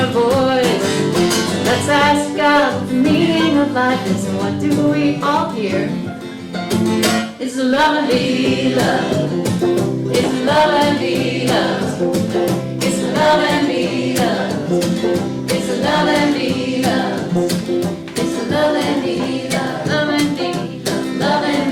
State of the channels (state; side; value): identical; both; correlation 1.00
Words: voice. Let's ask God what the meaning of life is and what do we all hear? It's to love and be loved. It's to love and be loved. It's to love and be loved. It's to love and be loved. It's to love and be loved. Love and be loved. Love and